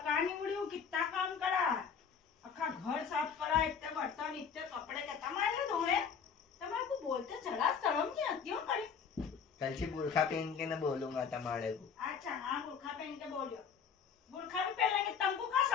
कहाँ निवड़ी हूँ, कितना काम करा, अखा घर साफ करा, इतने बर्तन इतने कपड़े के तुम्हारे धोने। तुम्हारे को बोलते चला शर्म नहीं आती हो करी? कल से बुरखा पहन के न बोलूंगा तुम्हारे को। अच्छा हाँ, बुरखा पहन के बोलियो। बुरखा भी पहन लेंगे, तुमको क्या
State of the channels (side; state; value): right; quieter; 6.7 dB